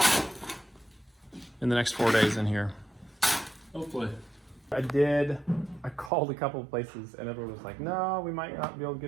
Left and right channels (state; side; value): drops out; left; at 6.1 s